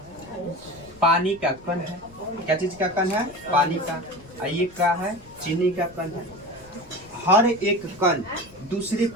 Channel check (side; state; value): left; noise; rumble, 23 dB below the sound